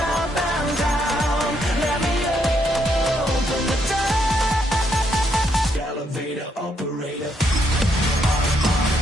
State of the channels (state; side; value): normal; both; correlation 0.75